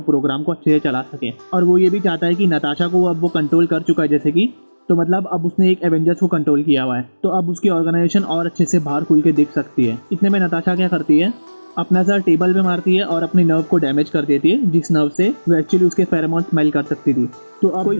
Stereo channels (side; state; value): both; inverted; correlation -1.00